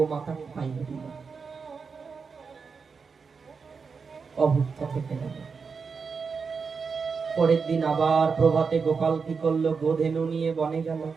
খাইয়ে দিল, অভুক্ত থেকে গেল। পরের দিন আবার প্রভাতে গোপাল কি করলো, গোধেনু নিয়ে বনে গেল।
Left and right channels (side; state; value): left; quieter; 5.3 dB